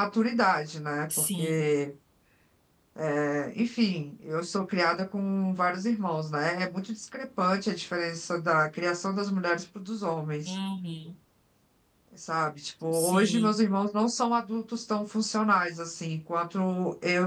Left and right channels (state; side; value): identical; both; correlation 1.00